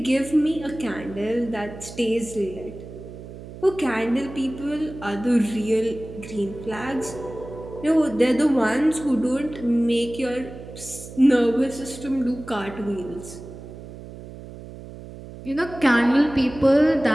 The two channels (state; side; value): noise; right; hum, 14 dB below the sound